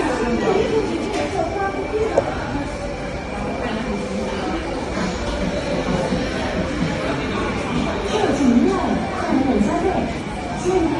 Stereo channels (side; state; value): both; identical; correlation 1.00